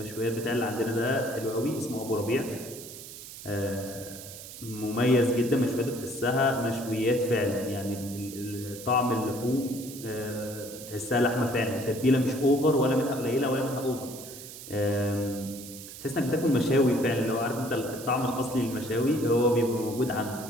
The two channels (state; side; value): noise; right; hiss, 13 dB below the sound